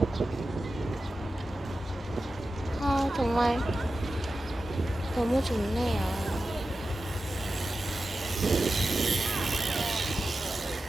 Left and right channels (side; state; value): both; normal; correlation 0.92